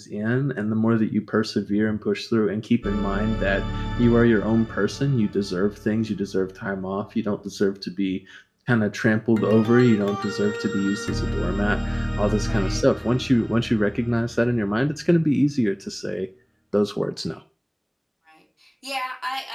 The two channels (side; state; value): both; identical; correlation 1.00